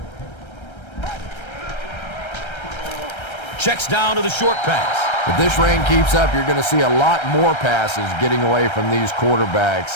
Checks down to the short pass. If this rain keeps up, you're going to see a lot more passes getting away from these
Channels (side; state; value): right; late; 1.3 ms